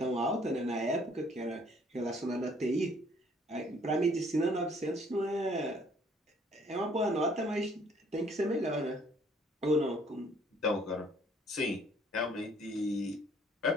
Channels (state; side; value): normal; both; correlation 0.61